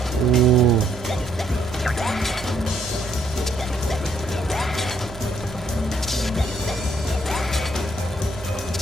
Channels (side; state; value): both; normal; correlation 0.70